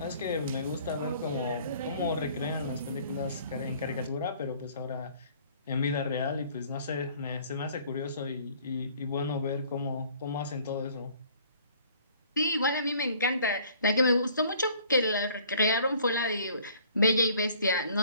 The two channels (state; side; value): inverted; both; correlation -0.56